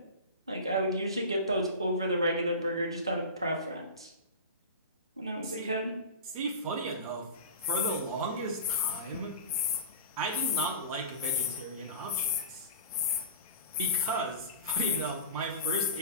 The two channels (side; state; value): both; inverted; correlation -0.32